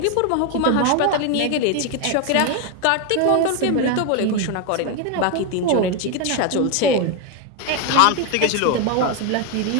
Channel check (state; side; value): different; both; correlation 0.01